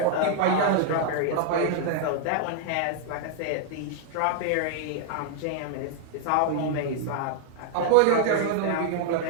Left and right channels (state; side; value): different; both; correlation 0.00